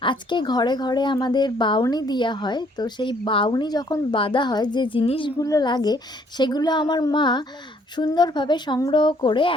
আজকে ঘরে ঘরে আমাদের বাউনি দেওয়া হয়। তো সেই বাউনি যখন বাঁধা হয়, যে জিনিসগুলো লাগে সেগুলো আমার মা সুন্দরভাবে সংগ্রহ করে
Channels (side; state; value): both; normal; correlation 0.64